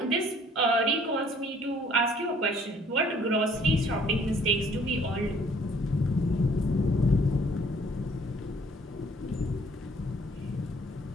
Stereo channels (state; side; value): normal; both; correlation 0.59